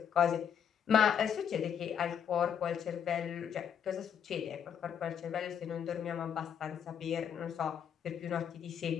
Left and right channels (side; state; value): right; quieter; 8.2 dB